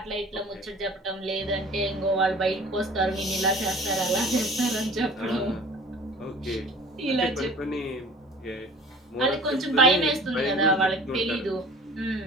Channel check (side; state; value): both; normal; correlation 0.45